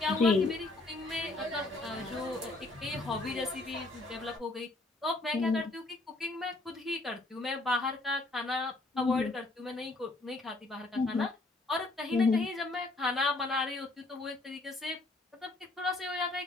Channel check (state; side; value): quieter; right; 3.0 dB